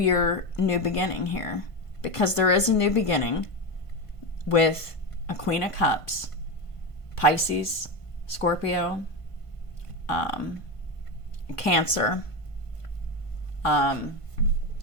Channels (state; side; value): late; right; 1.5 ms